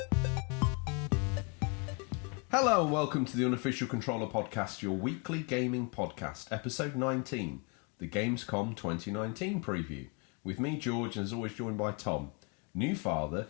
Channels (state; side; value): quieter; right; 32.8 dB